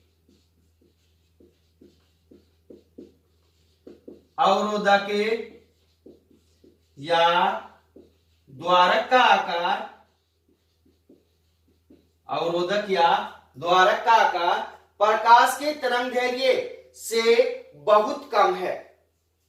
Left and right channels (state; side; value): identical; both; correlation 1.00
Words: अवरोधक या द्वारक का आकार, अवरोधक या द्वारक का आकार प्रकाश के तरंग दैर्घ्य से बहुत कम है,